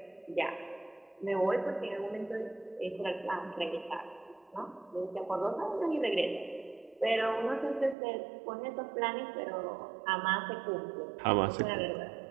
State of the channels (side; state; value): left; drops out; at 8.0 s